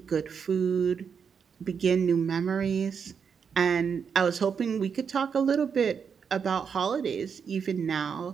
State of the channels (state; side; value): quieter; left; 6.6 dB